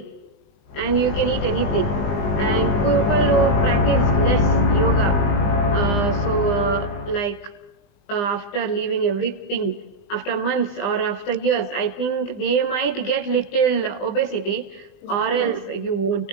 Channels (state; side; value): late; right; 20 ms